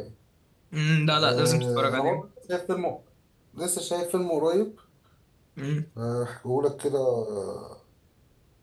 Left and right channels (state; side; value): identical; both; correlation 1.00